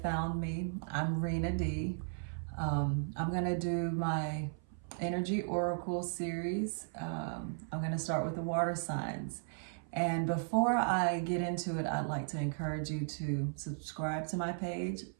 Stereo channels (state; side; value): silent; left; 54 dB below the other